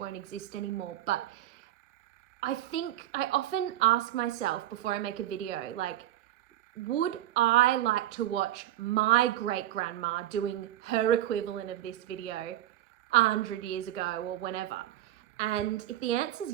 exist anymore. But I think I often ask myself before I make a video, like, would I like to watch my great-grandma doing her equivalent of this video 100 years ago or whenever? And if the answer is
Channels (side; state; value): left; quieter; 13.7 dB